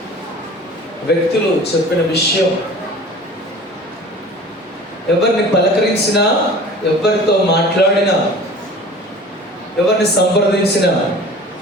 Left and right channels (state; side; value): normal; both; correlation 0.42